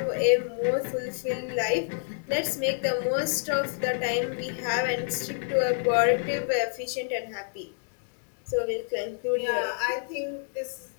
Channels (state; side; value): silent; right; digital silence